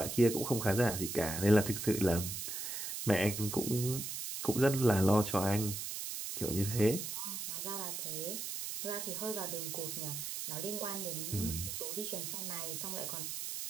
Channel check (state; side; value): noise; right; hiss, 5 dB below the sound